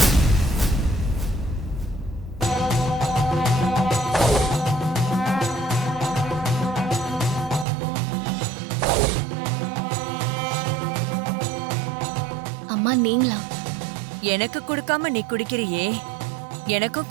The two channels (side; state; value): left; drops out; at 7.7 s